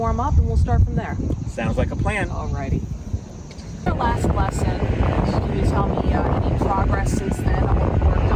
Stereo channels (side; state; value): both; identical; correlation 1.00